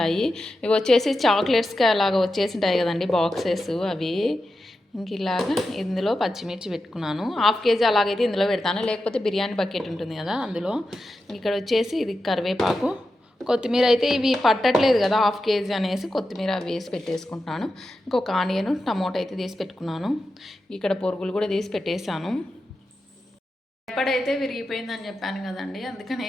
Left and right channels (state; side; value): normal; both; correlation 0.90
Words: ఇవి వచ్చేసి చాక్లెట్స్కి అలాగ వచ్చేసి ఉంటాయి కదండి బాక్సెస్, అవి. ఇలాగ ఇందులో పచ్చిమిర్చి పెట్టుకున్నాను. 1/2 kg అలాగైతే ఇందులో పెడతాను, లేకపోతే బిర్యానీ బకెట్ ఉంటుంది కదా అందులో. ఇక్కడ వచ్చేసి ఇది కరివేపాకు, కొత్తిమీర అయితే ఇవి పట్టట్లేదు కదా 1/2 kg అనేసి కొత్తిమీర వేసి పెట్టేసుకుంటున్నాను. ఇంకొక ఆనియన్ టమోటా అయితే తీసి పెట్టుకున్నాను. ఇక్కడ పొరుగులు కూడా తీసి పెట్టేశాను. ఎప్పుడైతే విరిగిపోయిందని చెప్పాను కదండి,